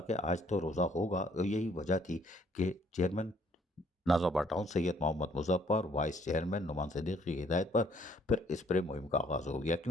آج تو روزہ ہوگا، اور یہی وجہ تھی کہ چیئرمین ناظم town Syed Muhammad Muzaffar, vice chairman Noman Siddiqui کی ہدایت پر پھر اسپرے مہم کا آغاز ہو گیا،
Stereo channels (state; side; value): normal; both; correlation 0.63